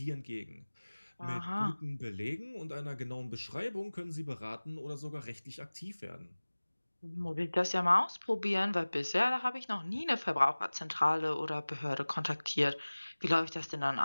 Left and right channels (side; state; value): both; inverted; correlation -1.00